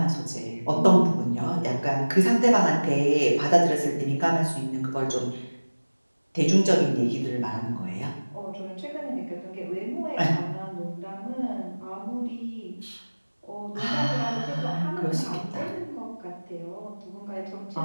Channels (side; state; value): both; inverted; correlation -1.00